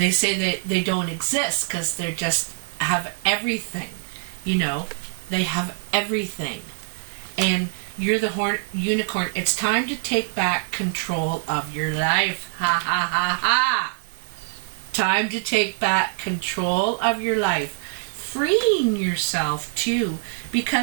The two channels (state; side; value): silent; left; 59 dB below the other